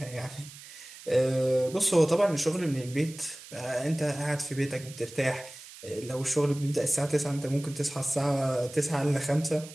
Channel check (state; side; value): noise; right; hiss, 17 dB below the sound